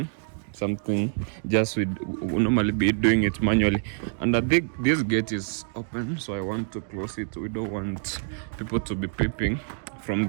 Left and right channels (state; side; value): silent; left; digital silence